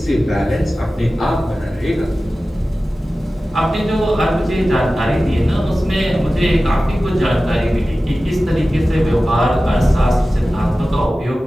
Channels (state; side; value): normal; both; correlation 0.95